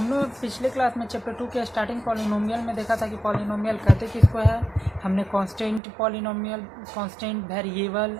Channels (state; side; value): drops out; left; at 5.8 s